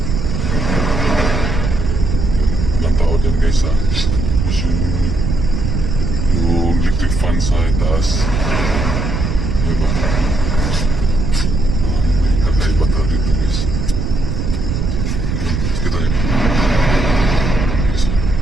Yun, ilang tao dyan guys ha. Tapos yung electric fan sa itaas. Yun ba? Parang may kakaiba talaga dito guys. Yun, kita niyo. Yun guys.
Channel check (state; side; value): noise; right; rumble, 2 dB below the sound